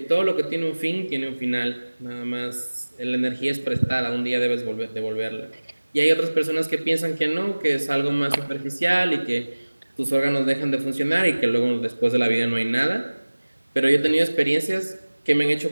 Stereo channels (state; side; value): inverted; both; correlation -1.00